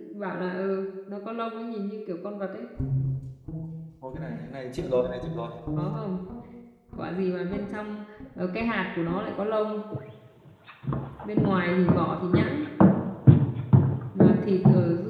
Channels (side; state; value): both; identical; correlation 1.00